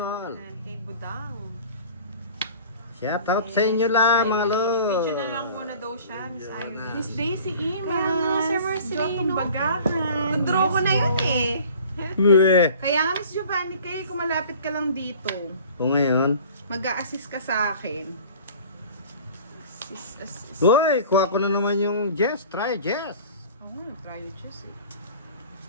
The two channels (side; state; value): both; inverted; correlation -0.45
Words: And kay Budang. Shout out sa inyo lang, mga Video na lo. lang muna daw siya, Miss Irene. Miss Daisy Kaya nga, Imas. Sir Marcelino. Jotong Bagahan. Nag-draw ko na yun eh. Uwe. Kaya nga, Miss Giovanni, kaya kung malapit ka lang dito, Kung ngayon, mag-a-assist ka sa akin. Sis. uy, kuha ko na naman yung Jess. Try Jess. Oo, try it just eh.